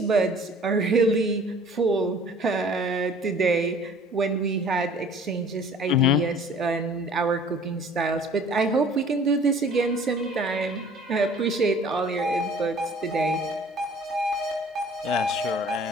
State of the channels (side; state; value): both; normal; correlation 0.51